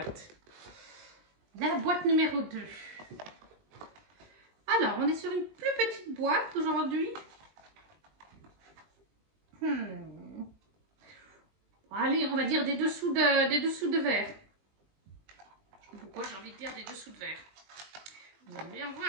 La boîte numéro 2. Alors, on est sur une plus petite boîte aujourd'hui. Allez, on va dire des dessous de verre. Je sais pas pourquoi j'ai envie de dire des dessous de verre. Vous allez bien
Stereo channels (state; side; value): late; left; 20 ms